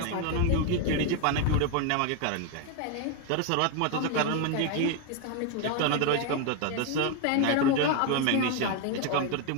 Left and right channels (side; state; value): both; different; correlation 0.01